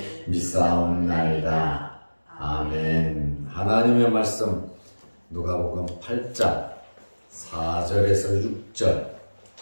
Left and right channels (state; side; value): inverted; both; correlation -1.00